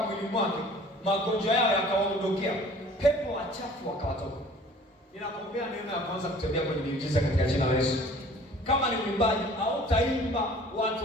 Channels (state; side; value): normal; both; correlation 0.50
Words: mwake, magonjwa yao yakawaondokea, pepo wachafu wakawatoka. Ninakuombea neema ya kwanza kutembea kwenye miujiza katika jina la Yesu. Kama ni mwimbaji au taimba